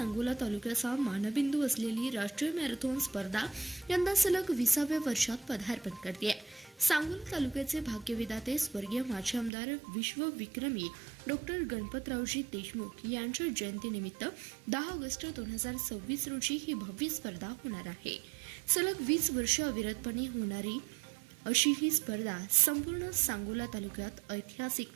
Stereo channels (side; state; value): left; drops out; at 9.5 s